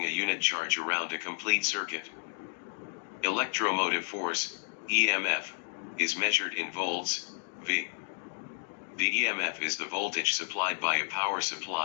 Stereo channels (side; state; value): right; silent; digital silence